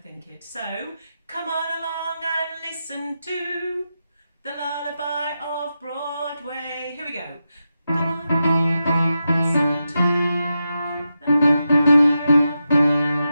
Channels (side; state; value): both; inverted; correlation -0.88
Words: it. So, come on along and listen to the lullaby of Broadway. Here we go. Come on along and listen to the